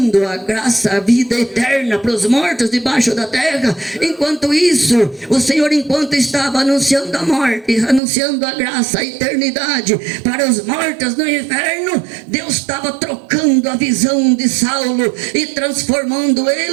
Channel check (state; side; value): drops out; left; at 8.0 s